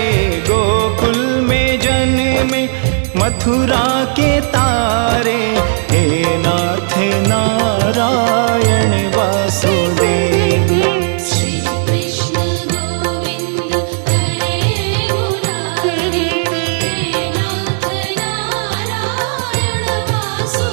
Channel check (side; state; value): left; silent; digital silence